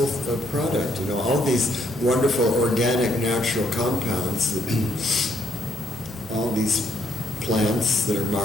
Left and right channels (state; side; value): noise; right; hum, 21 dB below the sound